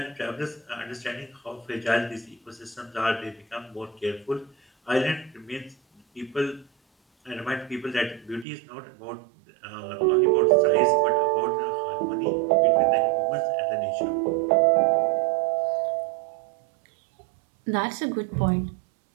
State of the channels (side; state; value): left; drops out; at 8.5 s